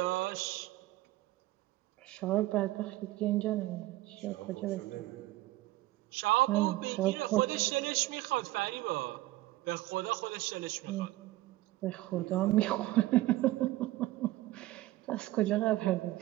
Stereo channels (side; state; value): left; quieter; 17.2 dB